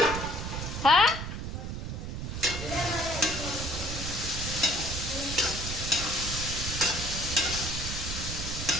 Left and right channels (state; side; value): noise; right; rumble, 5 dB below the sound